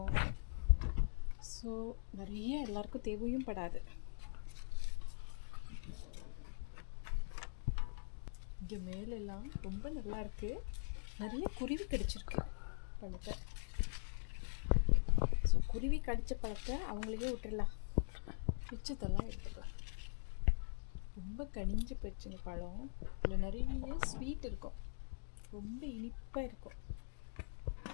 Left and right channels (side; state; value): right; silent; digital silence